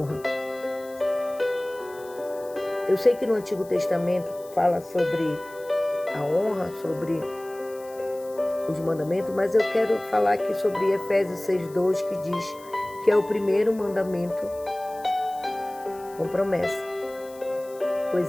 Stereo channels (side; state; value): left; noise; hiss, 22 dB below the sound